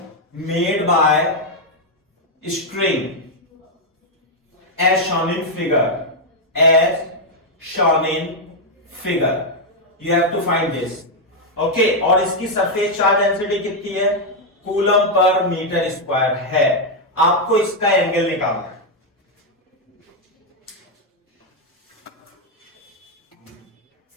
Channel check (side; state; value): both; normal; correlation 0.00